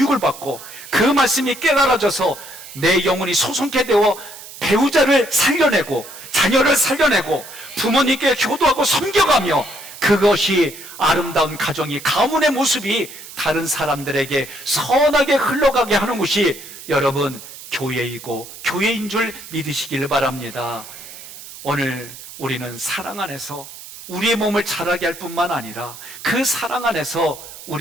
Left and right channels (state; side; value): noise; right; hiss, 15 dB below the sound